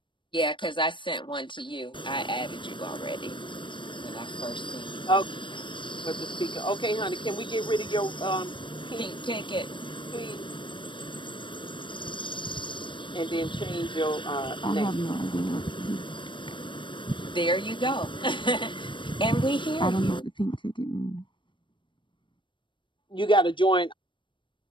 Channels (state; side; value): late; right; 0.24 ms